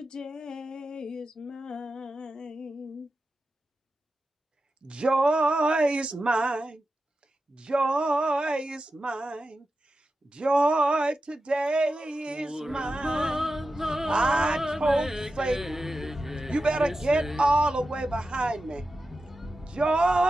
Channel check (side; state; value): both; normal; correlation 0.91